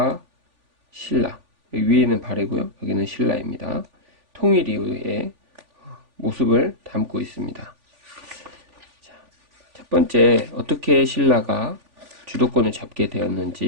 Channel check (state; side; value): late; left; 3.5 ms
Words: 신라, 여기 위에는 발해고요, 여기는 신라입니다. 통일 이후의 모습을 담고 있습니다. 자, 첫 번째, 어떻게 신라가 주도권을 잡게